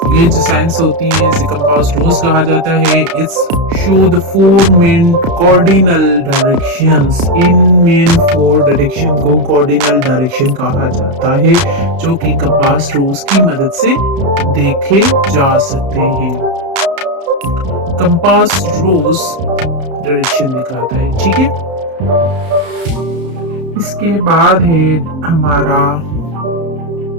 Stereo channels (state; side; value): late; left; 32 ms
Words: ये जो साइंस होती है इसे कंपास रोज कहा जाता है। It's show the four main cardinal directions. In main four direction को कॉर्डिनल डायरेक्शन कहा जाता है, जो कि कंपास रोज की मदद से देखे जा सकते हैं। कंपास रोज डायरेक्शन दिखाता है, ठीक है। इसके बाद है हमारा